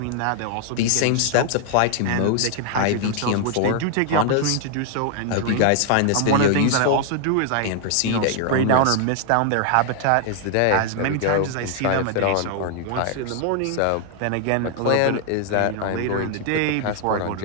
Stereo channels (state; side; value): different; both; correlation 0.00